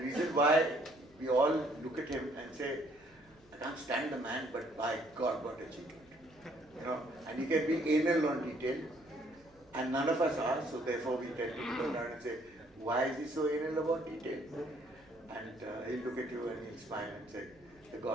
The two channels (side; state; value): right; noise; hum, 30 dB below the sound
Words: why we all look at him and say, I can't stand the man, but by God, what achievement. And he can be anal on detail, and none of us are, so therefore we tend to go around and say, why is he so anal about detail? And he'll look at you and he'll smile and say, the